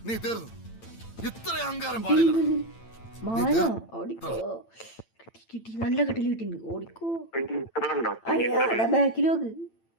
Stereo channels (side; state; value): right; late; 8.9 ms